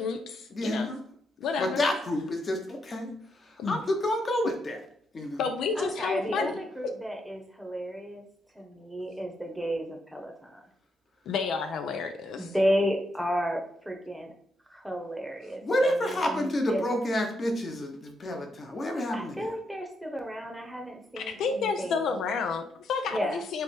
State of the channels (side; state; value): both; normal; correlation 0.79